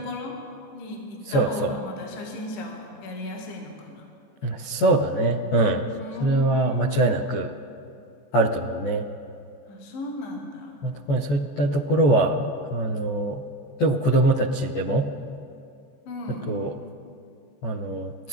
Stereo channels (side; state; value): right; late; 14 ms